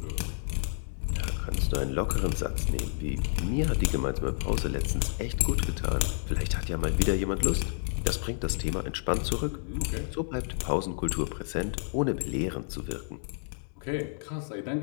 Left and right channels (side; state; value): right; silent; digital silence